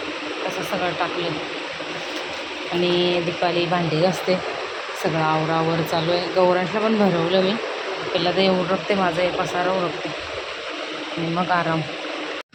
तसं सगळं टाकलं आणि दीपाली भांडी घासते. सगळं आवरावर चालू आहे. गौरांशला पण भरवलं मी. पहिला ते उरकते माझं हे पसारा उरकते आणि मग आराम.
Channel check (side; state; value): both; identical; correlation 1.00